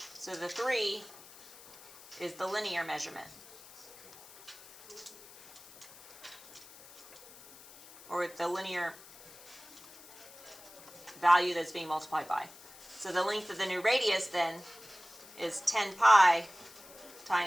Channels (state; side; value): noise; left; hiss, 20 dB below the sound